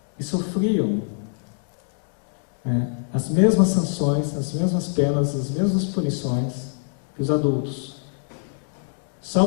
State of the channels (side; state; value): right; silent; digital silence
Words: e sofriam, né, as mesmas sanções, as mesmas penas, as mesmas punições que os adultos.